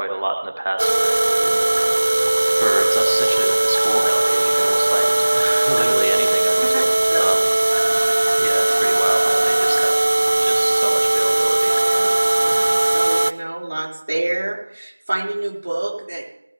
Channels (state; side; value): inverted; both; correlation -1.00